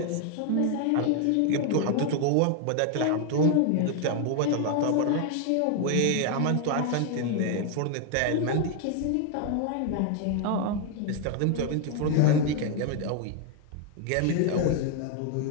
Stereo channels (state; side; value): different; both; correlation 0.01